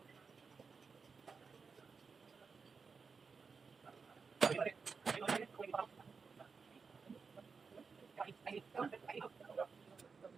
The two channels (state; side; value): quieter; left; 5.2 dB